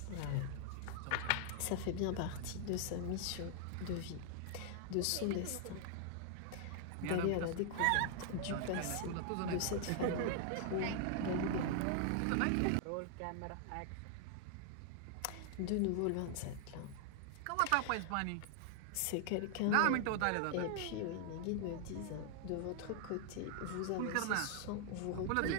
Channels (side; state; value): both; different; correlation -0.01